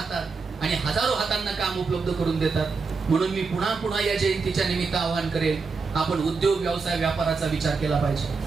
आणि हजारो हातांना काम उपलब्ध करून देतात. म्हणून मी पुन्हा पुन्हा या जयंतीच्या निमित्त आवाहन करेन, आपण उद्योग व्यवसाय व्यापाराचा विचार केला पाहिजे.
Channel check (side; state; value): left; quieter; 4.7 dB